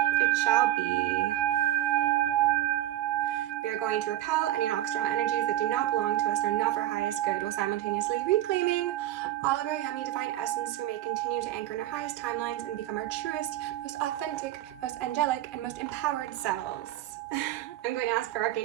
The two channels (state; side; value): quieter; left; 14.3 dB